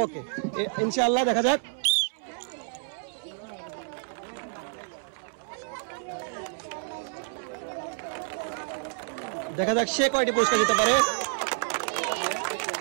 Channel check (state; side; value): silent; left; 59 dB below the other